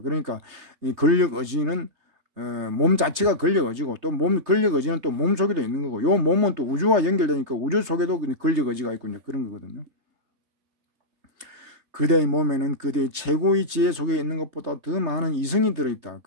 이 권력 의지는 몸 자체가 권력 의지고 또 권력 의지는 또 몸 속에도 있는 거고 요 몸은 또 우주와 연결되니까 우주 속에도 권력 의지가 있고 그런 거거든요. 그대의 몸에는 그대의 최고의 지혜 속에 있는 것보다 더 많은 이성이 들어있다.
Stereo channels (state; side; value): late; left; 3.3 ms